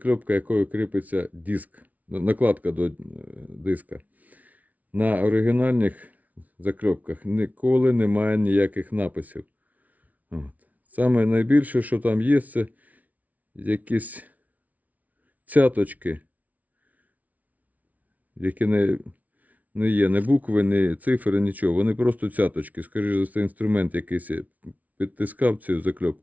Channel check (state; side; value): late; left; 0.072 ms